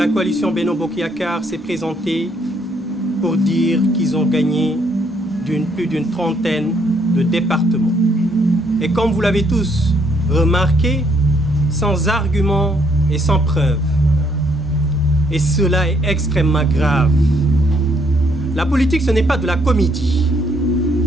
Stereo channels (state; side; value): normal; both; correlation 0.69